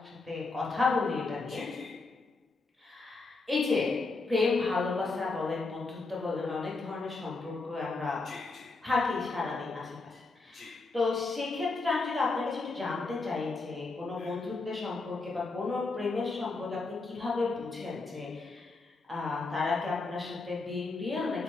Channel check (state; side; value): quieter; right; 3.7 dB